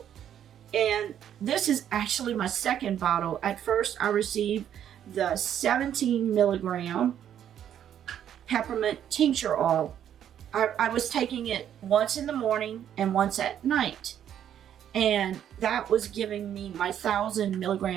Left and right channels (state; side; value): quieter; left; 9.9 dB